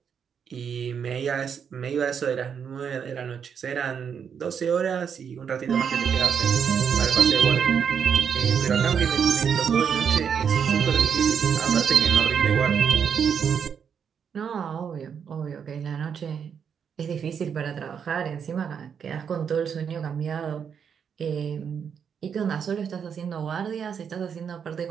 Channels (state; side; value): quieter; left; 7.3 dB